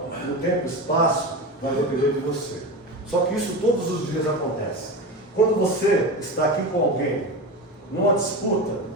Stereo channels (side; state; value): both; normal; correlation 0.24